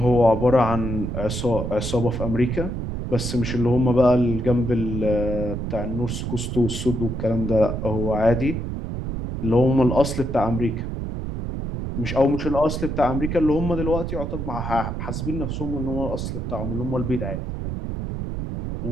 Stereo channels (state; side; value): noise; right; rumble, 4 dB below the sound